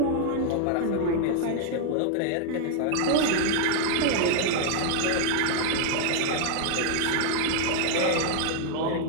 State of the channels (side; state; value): both; different; correlation 0.00